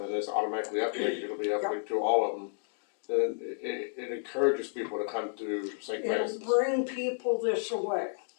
and it's automatically uplinked, it'll be uplinked to all of them. Then it encourages people to come to St. It'll Francis. bring people this way.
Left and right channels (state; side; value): silent; right; digital silence